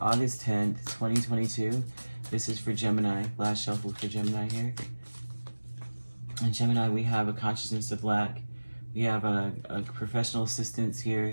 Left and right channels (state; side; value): inverted; both; correlation -1.00